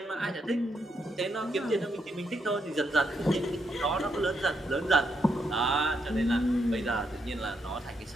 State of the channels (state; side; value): normal; both; correlation 0.78